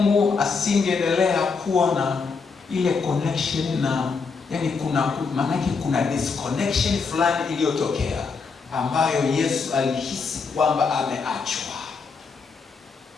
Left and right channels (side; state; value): right; quieter; 5.0 dB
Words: asingeendelea kuwa na ile connection na kuna disconnection fulani iliyotokea ambayo Yesu alihisi kwamba ameachwa.